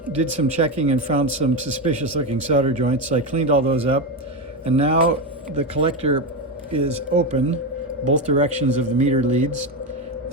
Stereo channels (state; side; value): normal; both; correlation 0.13